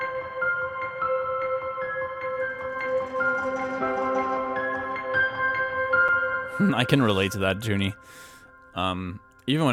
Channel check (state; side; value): identical; both; correlation 1.00